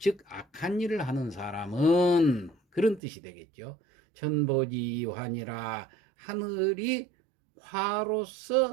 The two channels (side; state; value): left; drops out; at 3.0 s